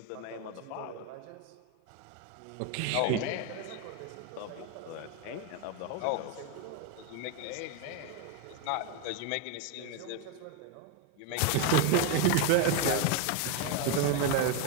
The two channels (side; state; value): both; different; correlation 0.02